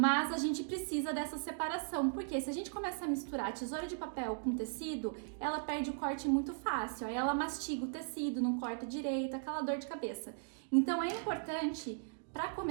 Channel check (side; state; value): left; silent; digital silence